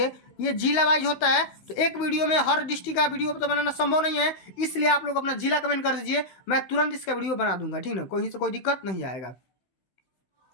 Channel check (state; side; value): late; right; 16 ms